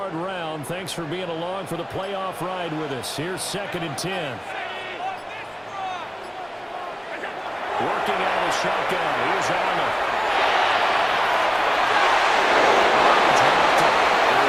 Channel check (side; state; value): both; identical; correlation 1.00